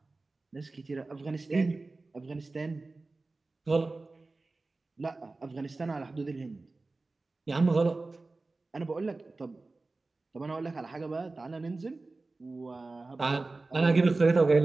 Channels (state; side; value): quieter; left; 3.4 dB